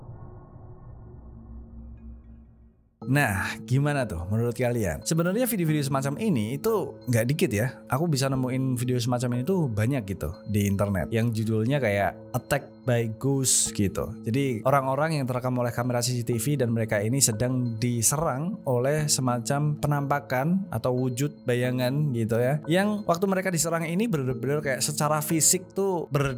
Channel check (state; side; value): identical; both; correlation 1.00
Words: Nah, gimana tuh menurut kalian? Sebenarnya video-video semacam ini itu nggak dikit ya. Aku bisa nemuin video semacam ini tuh banyak gitu di internet. Yang judulnya kayak Attack by Ghost gitu. Jadi orang-orang yang terekam oleh kamera CCTV dan mereka ini sedang diserang oleh semacam penampakan atau wujud bayangan gitu ya. Yang waktu mereka diserang ini benar-benar kayak secara fisik tuh